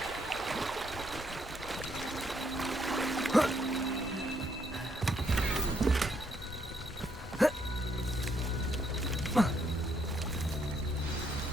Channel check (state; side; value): normal; both; correlation 0.73